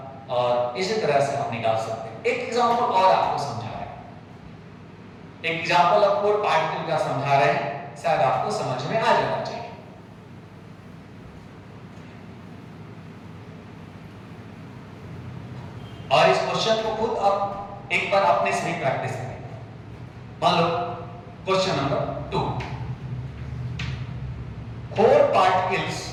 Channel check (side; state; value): both; identical; correlation 1.00